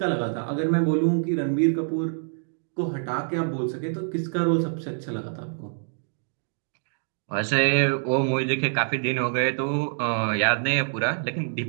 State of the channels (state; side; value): silent; left; digital silence